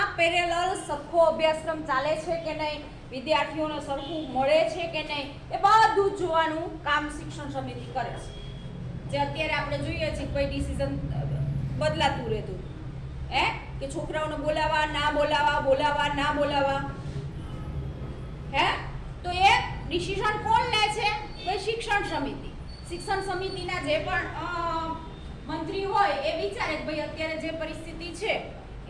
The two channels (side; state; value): both; identical; correlation 1.00